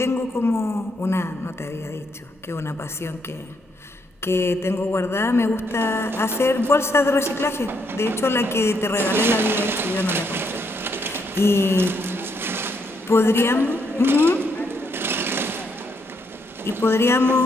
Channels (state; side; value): normal; both; correlation 0.75